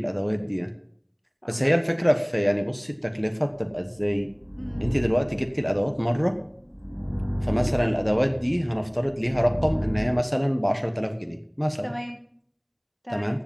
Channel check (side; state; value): both; identical; correlation 1.00